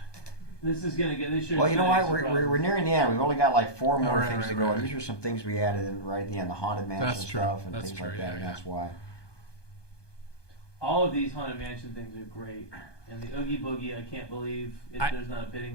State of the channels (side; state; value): right; late; 1.2 ms